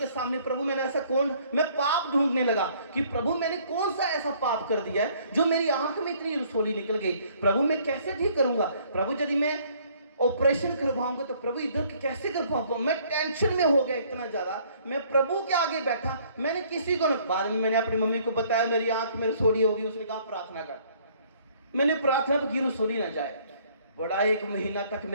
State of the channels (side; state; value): both; inverted; correlation -0.60